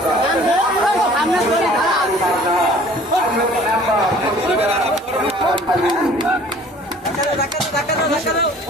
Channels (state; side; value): normal; both; correlation 0.51